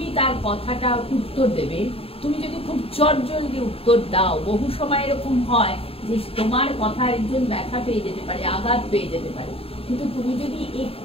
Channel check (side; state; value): right; late; 0.28 ms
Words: তার কথাটা উত্তর দেবে, তুমি যদি খুব চটজলদি উত্তর দাও, বহু সময় এরকম হয় যে তোমার কথা একজন ব্যথা পেয়ে যেতে পারে, আঘাত পেয়ে যেতে পারে, কিন্তু তুমি যদি